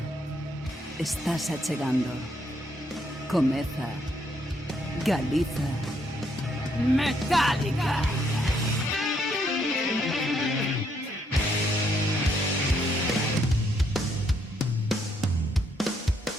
Estás achegando. Comeza Galiza Metálica.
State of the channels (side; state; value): both; normal; correlation 0.73